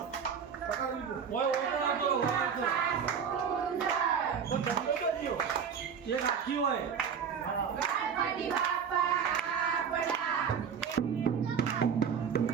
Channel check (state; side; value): quieter; left; 7.1 dB